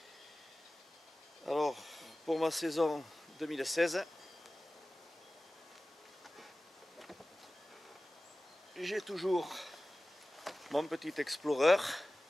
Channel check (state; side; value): normal; both; correlation 0.97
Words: Alors, pour ma saison 2016, j'ai toujours mon petit Explorer